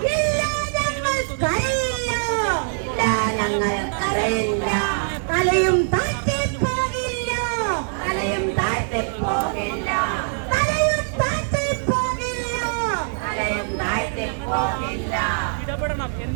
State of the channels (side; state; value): left; silent; digital silence